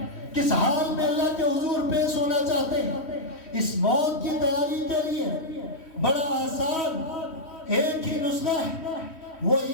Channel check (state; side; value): late; right; 3.1 ms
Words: کس حال میں اللہ کے حضور پیش ہونا چاہتے ہیں؟ اس موت کی تیاری کے لیے بڑا آسان ایک ہی نسخہ ہے، وہ